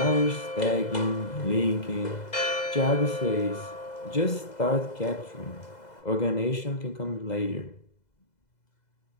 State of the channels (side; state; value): right; late; 2.0 ms